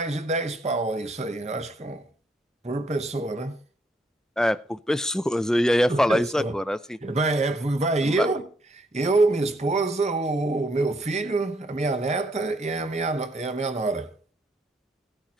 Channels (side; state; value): both; normal; correlation 0.72